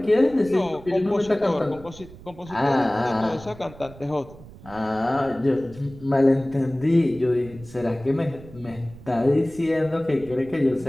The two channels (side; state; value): right; noise; rumble, 19 dB below the sound